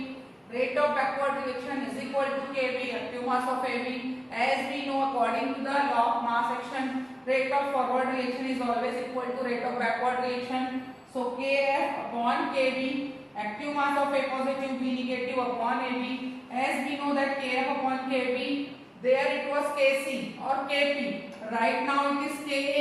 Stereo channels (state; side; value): identical; both; correlation 1.00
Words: Rate of backward reaction is equal to Kb, active mass of Ab. As we know, according to the law of mass action, rate of forward reaction is always equal to rate of backward reaction. So Kf upon Kb, active mass of A positive, B negative upon Ab. As we know that Kf upon Kb, there it was Kc or Kp. Right now it is